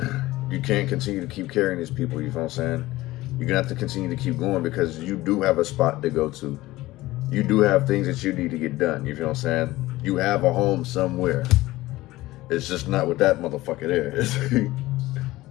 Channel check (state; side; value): quieter; right; 17.9 dB